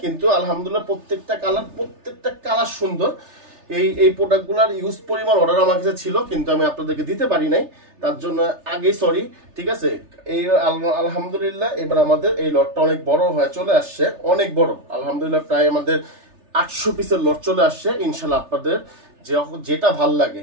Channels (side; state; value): left; late; 3.3 ms